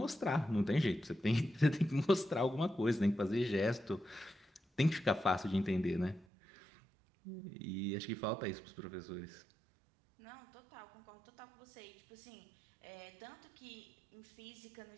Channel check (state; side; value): drops out; left; at 6.2 s